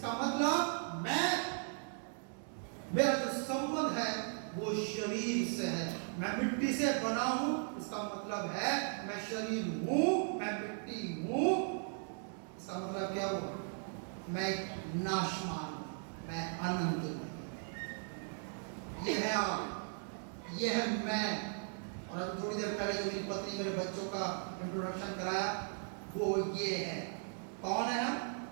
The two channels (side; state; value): left; silent; 53 dB below the other